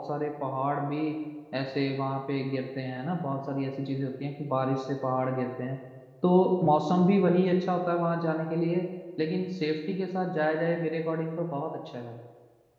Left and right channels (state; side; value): identical; both; correlation 1.00